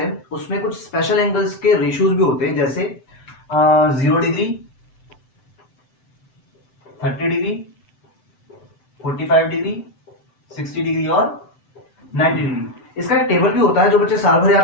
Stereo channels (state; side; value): late; right; 7.8 ms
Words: उसमें कुछ स्पेशल एंगल्स के रेशियोज भी होते हैं, जैसे 0 डिग्री, 30 डिग्री, 45 डिग्री, 60 डिग्री और 90 डिग्री। इसका एक टेबल भी होता है जो बच्चे साल भर